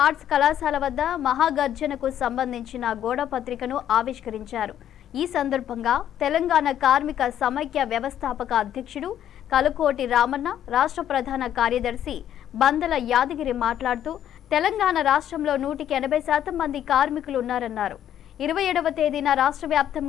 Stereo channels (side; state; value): right; quieter; 10.6 dB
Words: ఆర్ట్స్ కళాశాల వద్ద మహాగర్జనకు సంబంధించిన గోడ పత్రికను ఆవిష్కరించారు. ఈ సందర్భంగా తెలంగాణ కార్మిక సమైక్య వ్యవస్థాపక అధ్యక్షుడు కలుకోటి రామన్న, రాష్ట్ర ప్రధాన కార్యదర్శి బందల యాదగిరి మాట్లాడుతూ తెలంగాణ రాష్ట్రంలో 180% మంది కార్మికులు ఉన్నారన్నారు. 27వ తేదీన రాష్ట్ర